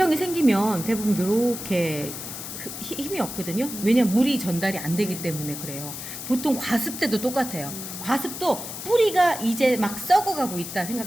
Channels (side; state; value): left; noise; hiss, 8 dB below the sound